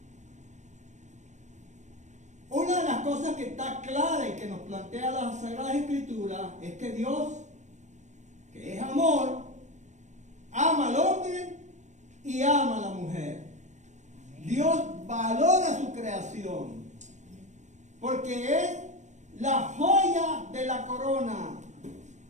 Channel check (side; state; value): left; late; 0.34 ms